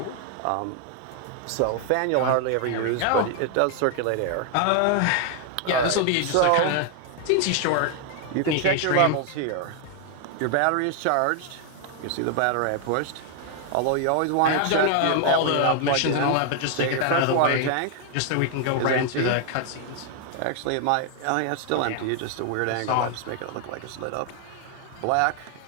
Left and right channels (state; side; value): different; both; correlation 0.00